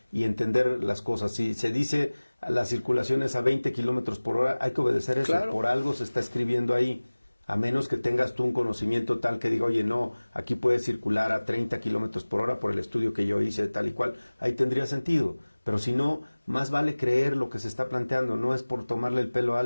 y entender las cosas. Si se dice la circulación es a 20 kilómetros por hora, hay que obedecer eso. Claro. Por algo se está escribiendo ahí. A menos que tengas tú un conocimiento tal que diga, oye, no, aquí puedes circular a 30 kilómetros por hora por el estudio que yo hice, tal y cual. Ahí tendría sentido. Pero si no, más vale creer lo que se está planteando. No es por tomarle el pelo a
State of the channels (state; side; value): inverted; both; correlation -1.00